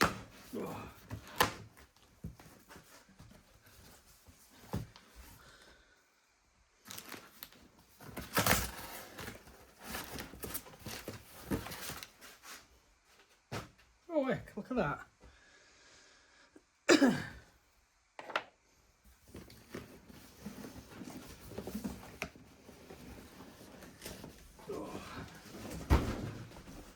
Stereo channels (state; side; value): identical; both; correlation 1.00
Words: Oh. Oh heck, look at that.